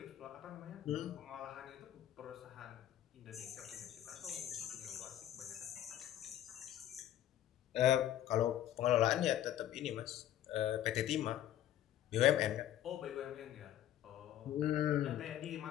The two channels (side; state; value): right; quieter; 11.9 dB